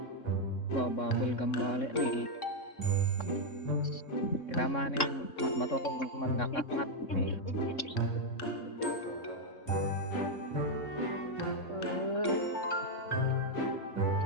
Bababol gambale ni. Kailangan ni matulog magkakakat ni.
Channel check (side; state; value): right; late; 3.6 ms